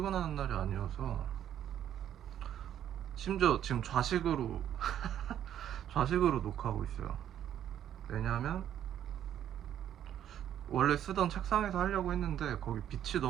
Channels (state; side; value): quieter; left; 10.6 dB